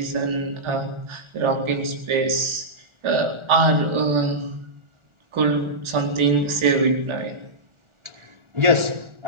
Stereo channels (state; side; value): late; left; 1.4 ms